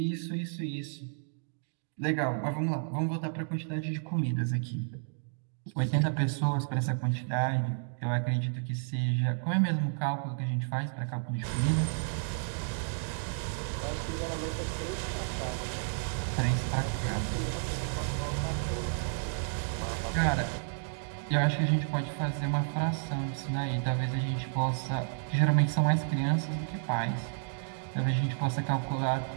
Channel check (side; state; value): left; silent; digital silence